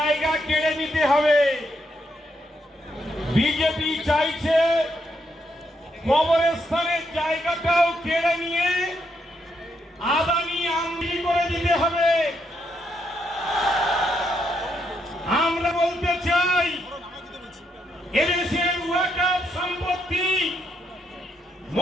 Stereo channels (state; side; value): normal; both; correlation 0.78